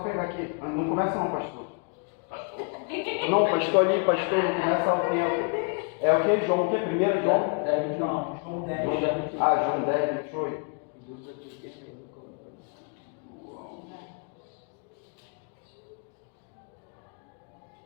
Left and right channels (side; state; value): right; quieter; 36.7 dB